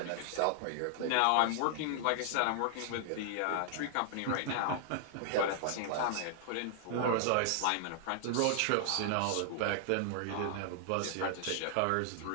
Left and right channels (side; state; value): both; different; correlation -0.01